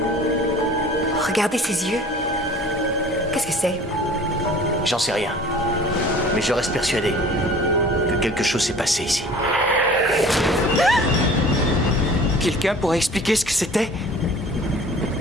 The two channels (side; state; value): both; normal; correlation 0.46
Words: Regardez ses yeux. Qu'est-ce que c'est? J'en sais rien. Mais je reste persuadé que quelque chose s'est passé ici. Quelqu'un pourrait expliquer ce que c'était?